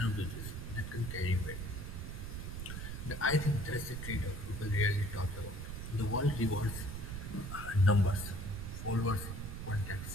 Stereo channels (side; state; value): right; noise; rumble, 6 dB below the sound